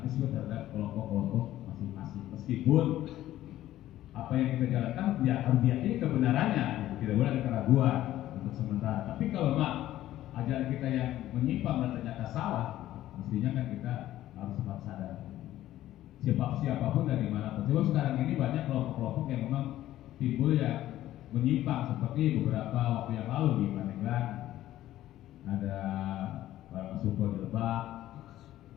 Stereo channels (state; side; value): quieter; right; 13.9 dB